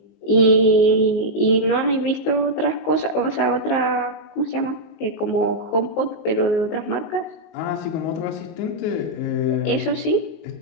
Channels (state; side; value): late; right; 19 ms